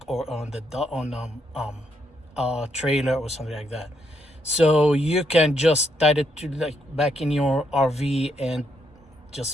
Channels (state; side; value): normal; both; correlation 0.76